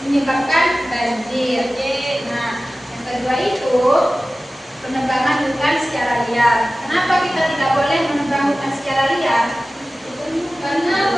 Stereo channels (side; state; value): both; normal; correlation 0.96